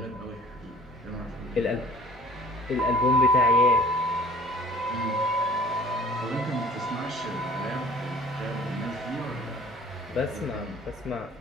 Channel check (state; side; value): normal; both; correlation 0.49